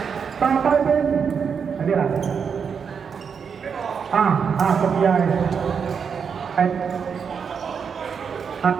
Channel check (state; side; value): quieter; left; 6.5 dB